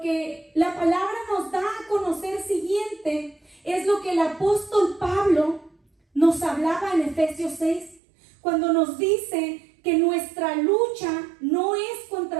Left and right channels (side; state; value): left; drops out; at 8.0 s